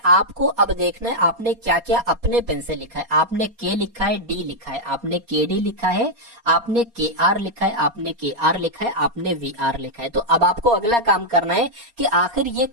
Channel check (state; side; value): late; left; 4.2 ms